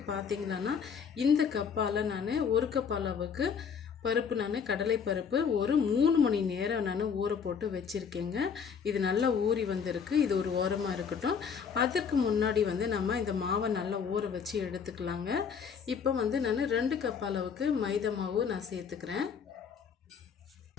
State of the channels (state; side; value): quieter; right; 6.6 dB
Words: பார்த்திங்கன்னா இந்த கப்பால் நான் 1 கப் அளவுக்கு பருப்பு கடலை பருப்பு ஒரு 3 மணி நேரம் நான் ஊற போட்டு வச்சுருக்கேங்க. இது நல்லா ஊறி வந்திருக்கு. இது ஒரு ஓரமாக இருக்கட்டும். அதற்கு முன்னாடி நம்ம இந்த மாவை நல்லா ஊற வச்சு எடுத்துக்கலாங்க. இப்போ நான் 2 கப் அளவுக்கு மைதா மாவு நான் சேர்த்துக்கிறேன்.